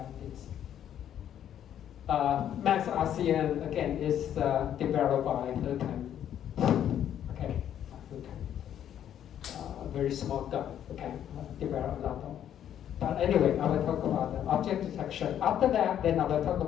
this. Max RCN again is developed by Hurkan. Okay, Hurkan. Very small guy. Okay, developed a lot of. But anyway, I will talk about the object detection. After that, then I will talk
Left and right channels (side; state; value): right; quieter; 10.2 dB